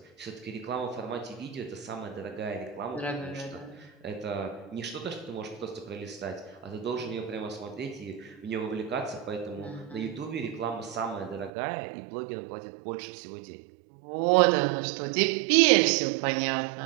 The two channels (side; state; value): left; drops out; at 11.5 s